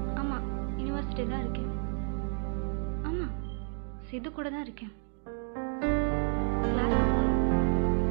ஆமா, யூனிவர்சிட்டி தான் இருக்கேன். ஆமா, சித்து கூட தான் இருக்கேன். கிளாஸ்க்கு போகணும்.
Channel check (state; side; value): silent; left; 57 dB below the other